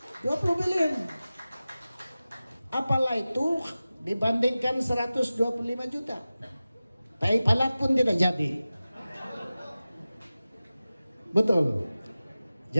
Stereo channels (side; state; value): both; inverted; correlation -0.96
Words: 20 bilion. Apalah itu dibandingkan 125 juta. Tai palat pun tidak jadi. Betul.